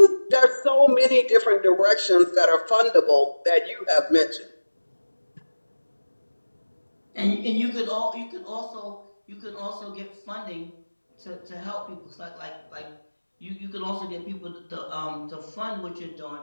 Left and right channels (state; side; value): inverted; both; correlation -1.00